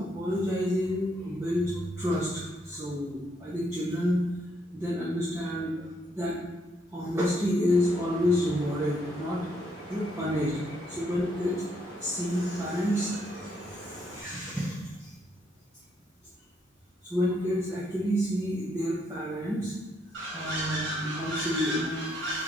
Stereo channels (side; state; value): both; normal; correlation 0.73